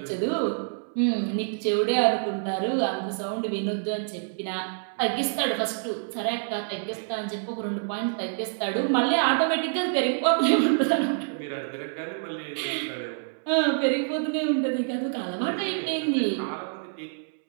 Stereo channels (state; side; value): silent; left; 60 dB below the other